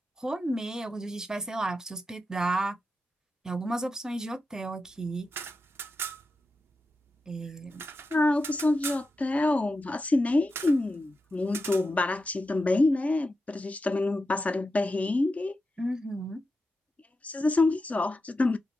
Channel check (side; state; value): both; normal; correlation 0.90